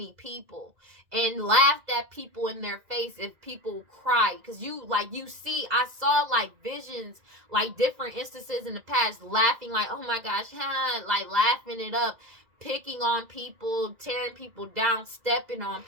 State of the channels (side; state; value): left; late; 2.0 ms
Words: people and laughed at people in their face if people cried. Because I saw like visions, like different instances in the past, laughing like, oh my gosh, like laughing it up. picking on people, tearing people down, stepping on